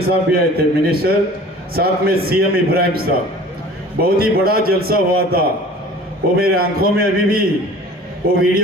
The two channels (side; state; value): both; normal; correlation 0.45